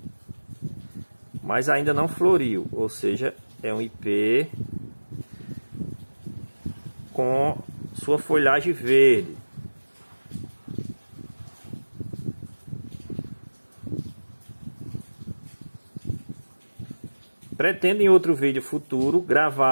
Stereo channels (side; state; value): both; inverted; correlation -1.00